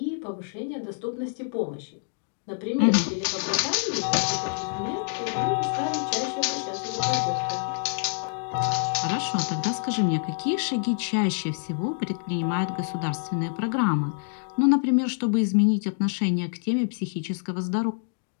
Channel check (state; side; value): silent; right; digital silence